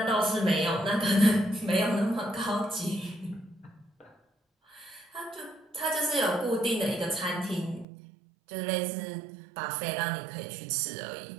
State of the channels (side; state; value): left; drops out; at 7.9 s